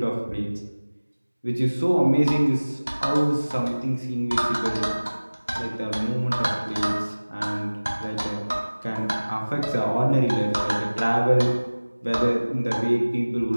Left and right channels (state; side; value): inverted; both; correlation -1.00